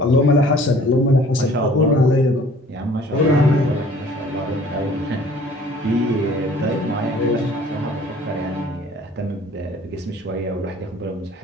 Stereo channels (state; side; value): normal; both; correlation 0.52